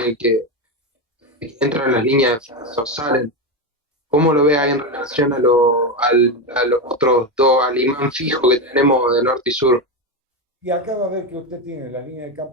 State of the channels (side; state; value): both; normal; correlation 0.13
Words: que entran las líneas o salen? ¿Cómo lo ve ahí en relación a los otros dos, al imán fijo que tenemos de norte y sur? y acá va a ver que usted tiene la línea de